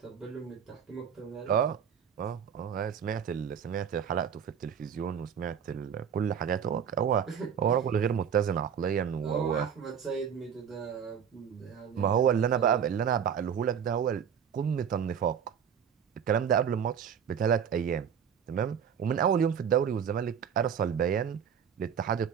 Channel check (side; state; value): left; quieter; 7.9 dB